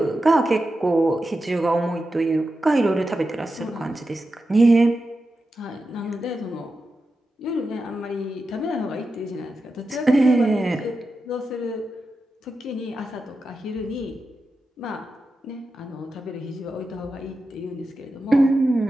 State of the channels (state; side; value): normal; both; correlation 0.91